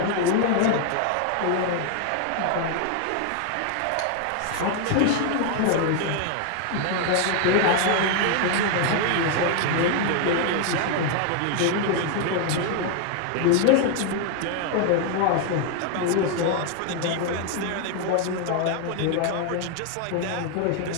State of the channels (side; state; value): both; different; correlation 0.00